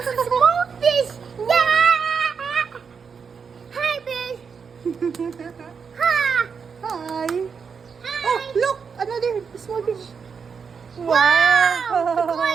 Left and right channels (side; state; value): left; quieter; 6.0 dB